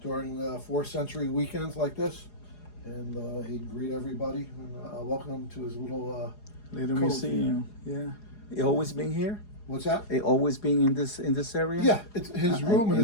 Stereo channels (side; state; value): right; late; 4.8 ms